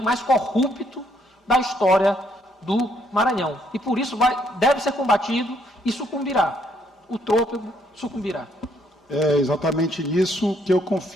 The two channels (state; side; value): normal; both; correlation 0.70